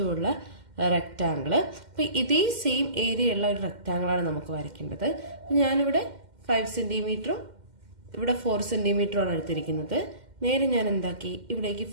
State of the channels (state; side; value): late; left; 2.1 ms